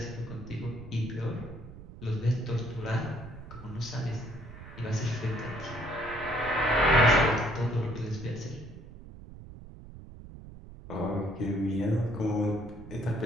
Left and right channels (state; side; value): noise; right; rumble, 15 dB below the sound